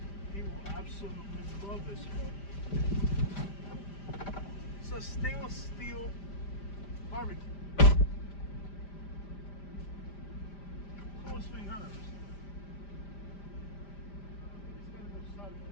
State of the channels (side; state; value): right; late; 5.0 ms